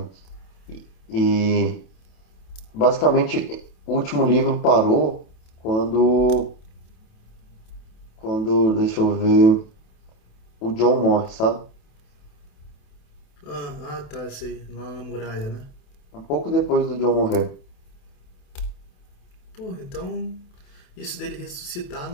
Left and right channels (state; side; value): late; right; 28 ms